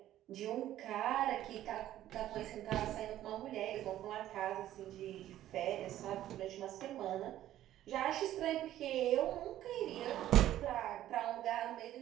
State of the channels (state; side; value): quieter; left; 13.0 dB